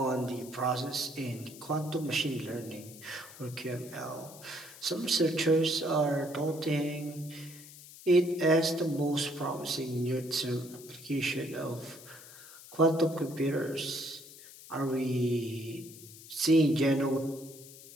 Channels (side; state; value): left; noise; hiss, 18 dB below the sound